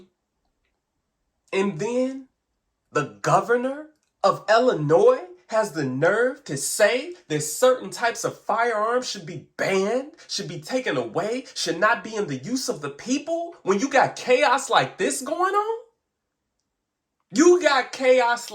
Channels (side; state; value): both; identical; correlation 1.00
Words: And then the governor of Illinois has the nerve to say that certain types of firearms should be banned, should be taken away, should not be in the use of the people when you got chaos like this going on? You got chaos